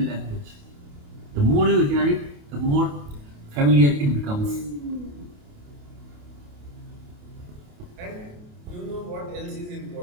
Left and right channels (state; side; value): late; left; 28 ms